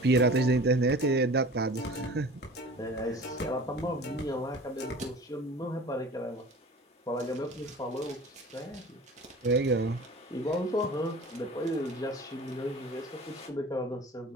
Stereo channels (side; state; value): both; normal; correlation 0.41